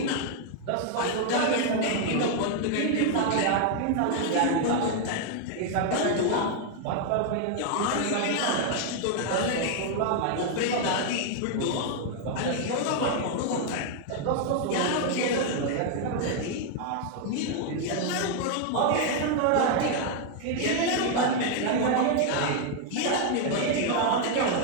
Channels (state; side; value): different; both; correlation 0.00